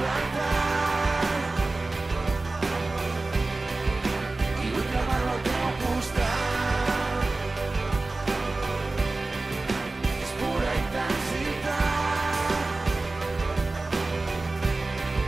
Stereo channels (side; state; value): left; quieter; 3.2 dB